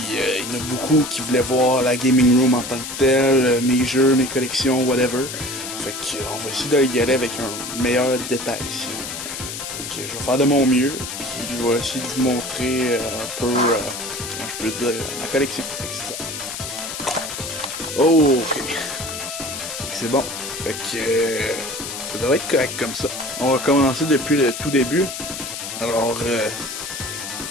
il y en a beaucoup qui voulaient voir la gaming room en tant que telle, mes jeux, mes collections, whatever. Fait qu'on va essayer d'y aller avec un meilleur détail ici. Donc je vais faire de mon mieux, puis je vais essayer de vous montrer un peu, comment je peux dire, ma collection. Fait que c'est ça. Oh, ok. C'est bon. Fait que ça devrait être correct comme ça. On va commencer depuis le tout début. Alors,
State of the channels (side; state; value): left; noise; hiss, 7 dB below the sound